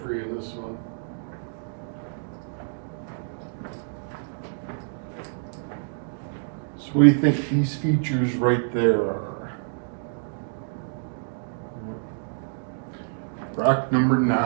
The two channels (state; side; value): silent; left; digital silence